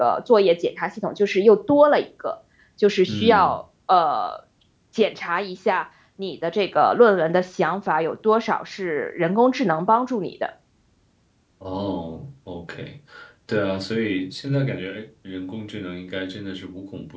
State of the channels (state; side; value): identical; both; correlation 1.00